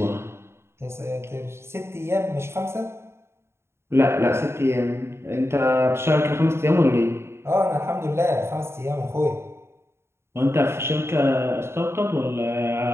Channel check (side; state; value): left; late; 0.12 ms